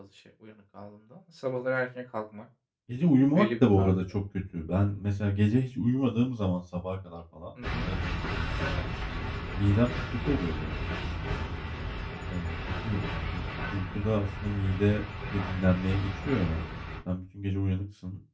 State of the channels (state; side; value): identical; both; correlation 1.00